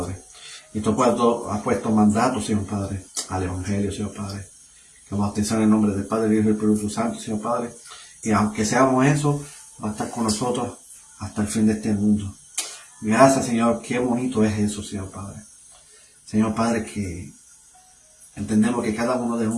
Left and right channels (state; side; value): identical; both; correlation 1.00